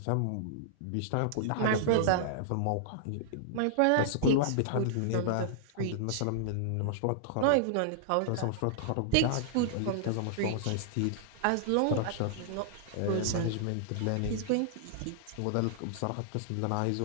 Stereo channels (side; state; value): both; different; correlation -0.01